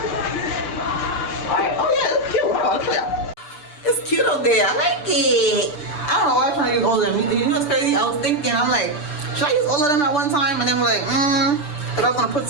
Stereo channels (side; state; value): right; late; 6.8 ms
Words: Alright, oh yeah, it's cute. Oh, look at that. It's cute up there. I like it. I don't know why I'm trying to use all of them. You know what's crazy? I was thinking, I'm like, should I use all of them at one time? And then I'm like, because I was going to put